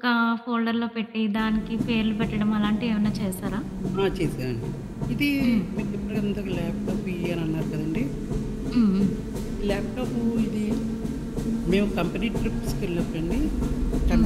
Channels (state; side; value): identical; both; correlation 1.00